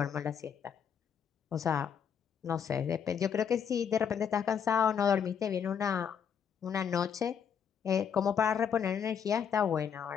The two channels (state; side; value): quieter; right; 7.6 dB